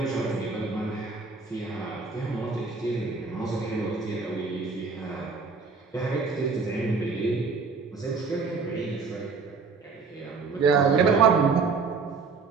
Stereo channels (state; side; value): quieter; left; 4.7 dB